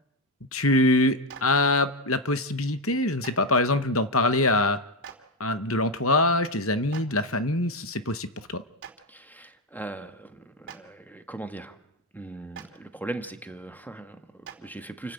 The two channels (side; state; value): both; normal; correlation 0.11